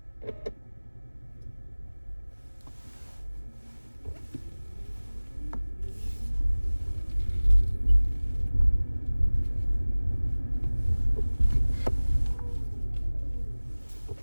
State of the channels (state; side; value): inverted; both; correlation -1.00